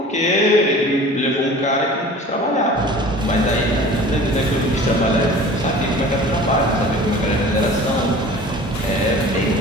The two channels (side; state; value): both; normal; correlation 0.42